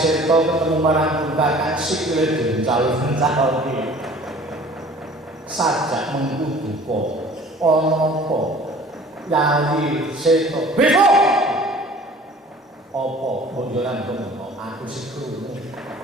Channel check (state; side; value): normal; both; correlation 0.48